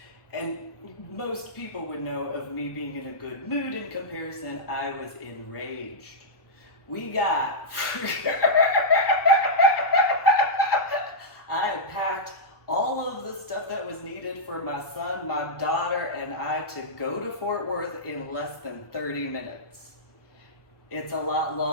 And most people would know of me being in a good mood. In comparison, I was enraged. We got... I had packed all of the stuff that was needed for my son, my daughter, and I to go to Fort Worth in less than 30 minutes. It's a lot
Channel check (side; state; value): right; late; 1.3 ms